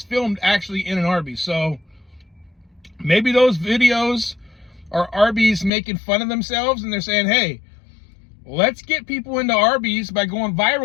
filmed actually in an Arby's. So maybe those videos are Arby's making fun of themselves. And they're saying, hey, let's get people into Arby's by going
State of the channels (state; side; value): drops out; right; at 5.7 s